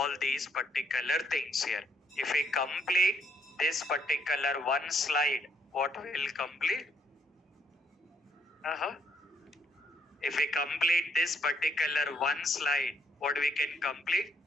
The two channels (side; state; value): both; normal; correlation 0.70